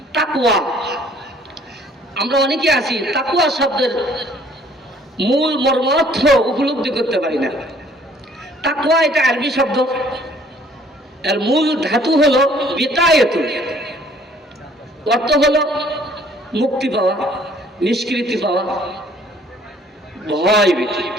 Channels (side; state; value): both; normal; correlation 0.58